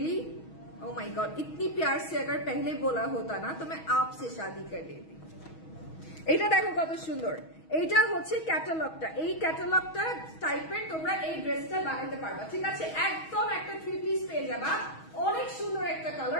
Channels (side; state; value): right; late; 6.3 ms